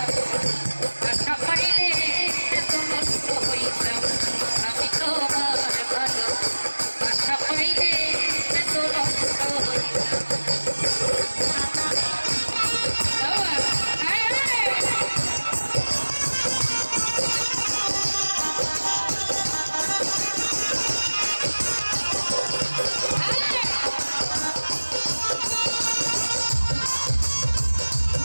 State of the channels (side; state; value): both; inverted; correlation -1.00